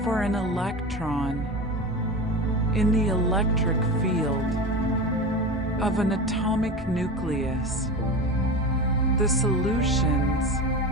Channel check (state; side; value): normal; both; correlation 0.27